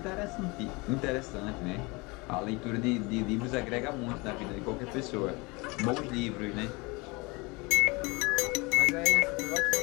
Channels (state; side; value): quieter; right; 26.1 dB